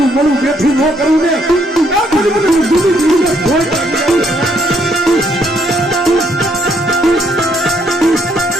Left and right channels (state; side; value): normal; both; correlation 0.71